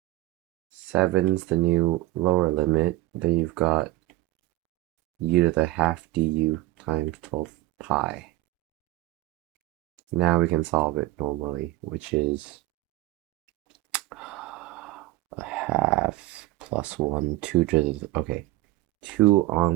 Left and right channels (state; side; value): quieter; left; 17.7 dB